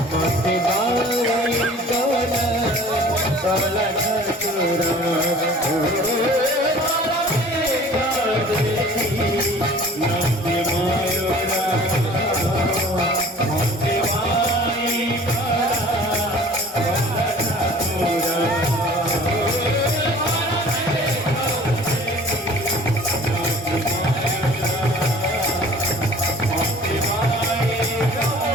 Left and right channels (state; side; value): normal; both; correlation 0.47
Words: মতে বাই কলা কলা ঠাকুর নাচে ময়ূরা